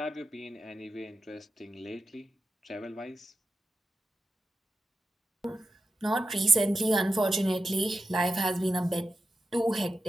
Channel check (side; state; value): both; normal; correlation 0.90